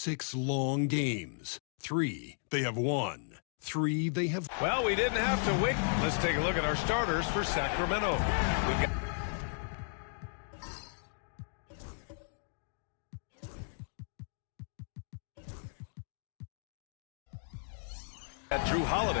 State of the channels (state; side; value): silent; right; digital silence